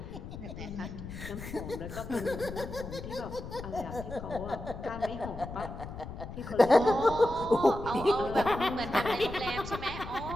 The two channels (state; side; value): noise; left; rumble, 10 dB below the sound